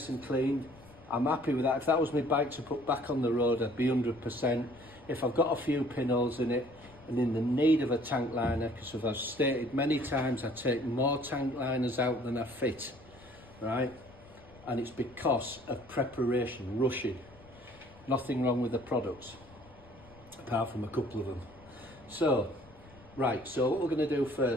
and clean, I'm happy with that. If that was my bike to put back on the road, I'd be 100%. If I've got a few pinholes in it and in the need of a tank liner, because as I've stated many times, I take more tank liners out than I fit, right? And it's because of preparation, rushing. Nothing wrong with the products, apart from a couple of them. So, right, so what we're going to do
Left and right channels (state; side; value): noise; left; rumble, 23 dB below the sound